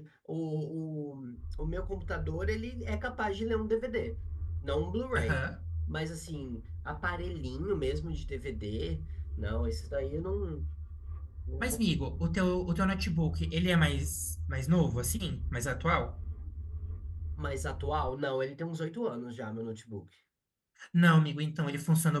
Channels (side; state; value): both; identical; correlation 1.00